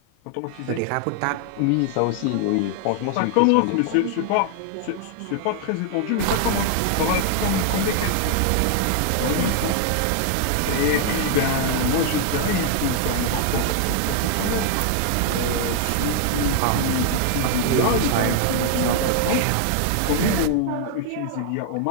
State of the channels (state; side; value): different; both; correlation 0.00